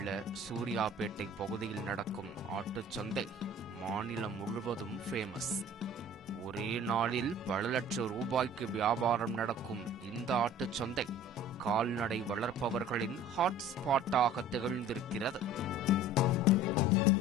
சூர்யாபேட்டை பகுதியில் நடக்கும் ஆட்டுச்சந்தை மாநிலம் முழுவதும் ஃபேமஸ். ஒரே நாளில் பல லட்சம் ரூபாய்க்கு வியாபாரம் நடக்கும் இந்த ஆட்டுச்சந்தை கால்நடை வளர்ப்பவர்களின் ஹாட்ஸ்பாட்டாக திகழ்ந்திருக்கிறது.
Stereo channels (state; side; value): normal; both; correlation 0.45